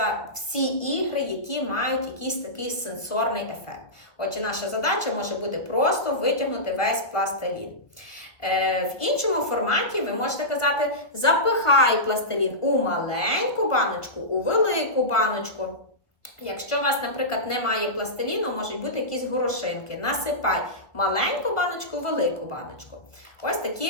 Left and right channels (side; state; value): right; late; 1.3 ms